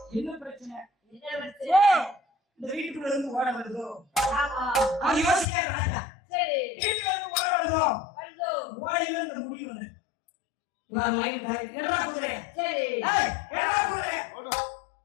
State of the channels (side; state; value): right; drops out; at 5.5 s